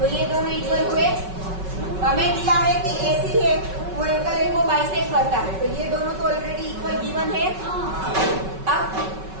ये दोनों इक्वल हुए। हमें दिया है कि AC है वो एंगल ए को बाइसेक्ट करता है, तो ये दोनों तो ऑलरेडी इक्वल गिवन है। अब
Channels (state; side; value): late; left; 5.3 ms